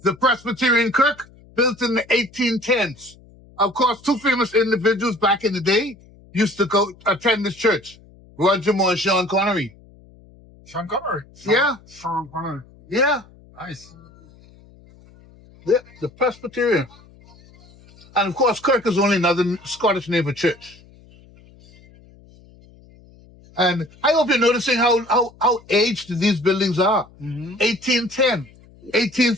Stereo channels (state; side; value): noise; left; hum, 25 dB below the sound